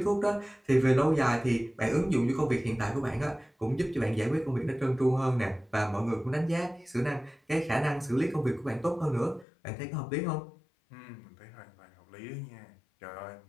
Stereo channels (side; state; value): right; drops out; at 9.5 s